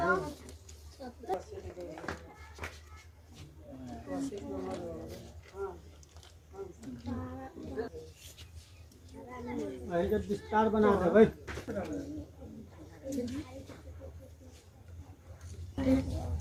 विस्तार बना दे भाई।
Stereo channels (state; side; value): identical; both; correlation 1.00